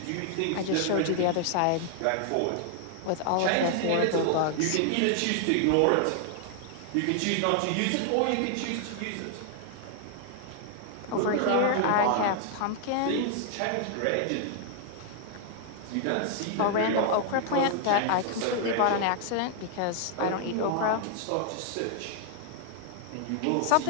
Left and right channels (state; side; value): different; both; correlation 0.00